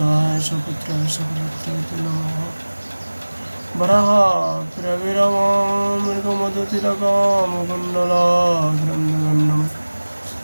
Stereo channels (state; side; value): inverted; both; correlation -1.00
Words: सपुत्राय सकलत्राय नमः वराहप्रविरमामृगमदतिलकामकुण्डलाग्रन्दगन्नं